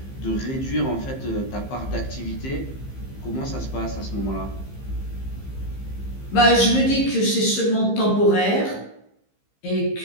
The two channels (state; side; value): late; right; 15 ms